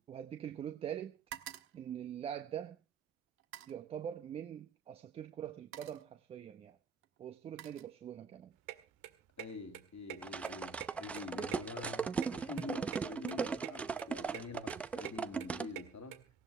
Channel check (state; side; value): quieter; left; 4.9 dB